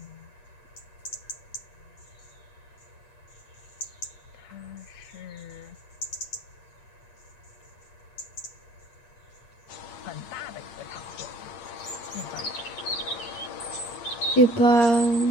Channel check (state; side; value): late; right; 8.6 ms